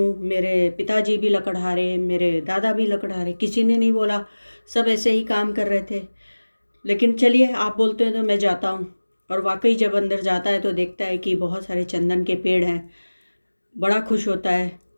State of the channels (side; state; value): both; inverted; correlation -1.00